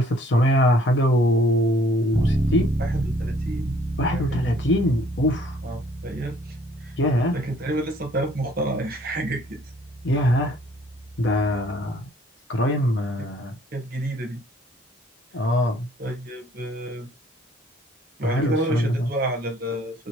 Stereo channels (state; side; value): normal; both; correlation 0.60